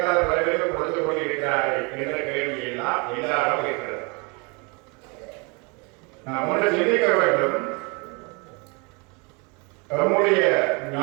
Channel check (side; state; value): left; quieter; 30.9 dB